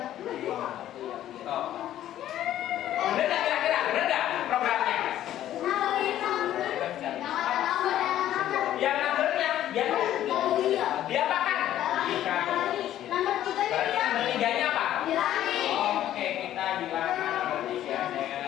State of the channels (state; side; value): quieter; right; 12.3 dB